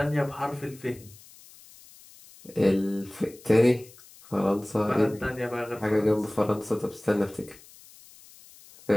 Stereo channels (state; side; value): noise; left; hiss, 23 dB below the sound